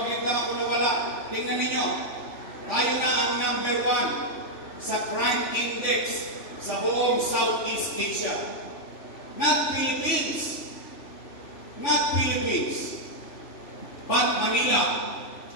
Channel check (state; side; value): late; right; 3.5 ms